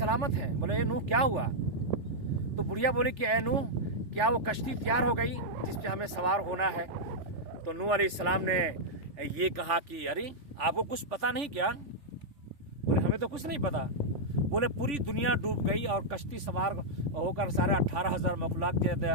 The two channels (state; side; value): late; left; 3.4 ms